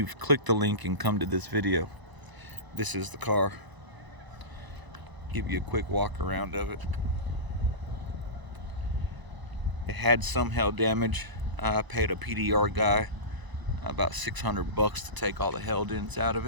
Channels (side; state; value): left; late; 1.0 ms